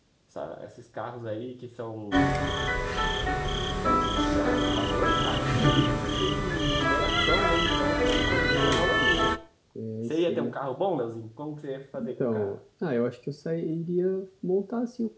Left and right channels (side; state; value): both; identical; correlation 1.00